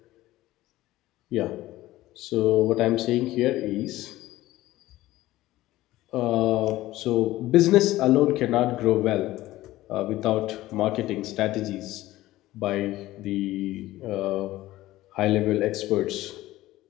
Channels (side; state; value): right; quieter; 16.4 dB